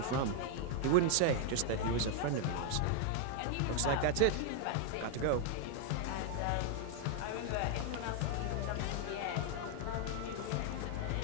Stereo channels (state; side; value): different; both; correlation 0.00